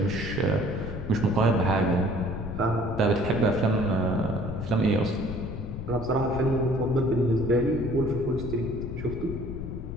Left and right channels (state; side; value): noise; left; rumble, 7 dB below the sound